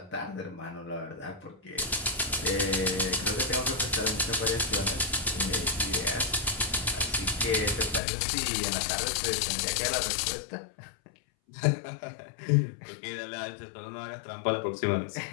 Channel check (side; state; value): right; drops out; at 8.0 s